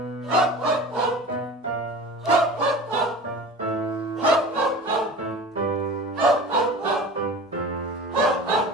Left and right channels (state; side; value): normal; both; correlation 0.36